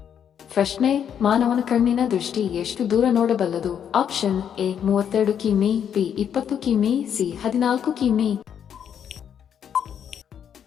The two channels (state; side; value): quieter; right; 8.6 dB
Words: ಪ್ರಶ್ನೆ: ಮಾನವನ ಕಣ್ಣಿನ ದೃಷ್ಟಿ ಎಷ್ಟು ದೂರ ನೋಡಬಲ್ಲದು? ಆಪ್ಷನ್ ಎ 32 ಕಿಮಿ, ಬಿ 20 ಕಿಮಿ, ಸಿ 14 ಕಿಮಿ.